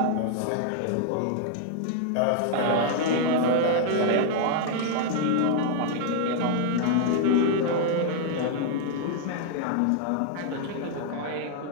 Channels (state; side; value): different; both; correlation 0.00